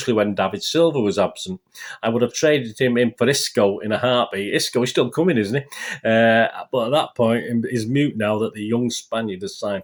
when David Silva was absent. I would have traded him in for Isco in a heartbeat. Isco is still coming, isn't he? But at that point, he's mute now that the young Spaniard has signed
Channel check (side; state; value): both; identical; correlation 1.00